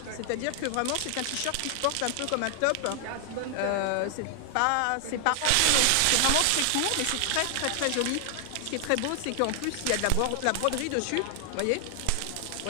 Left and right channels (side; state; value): both; different; correlation 0.00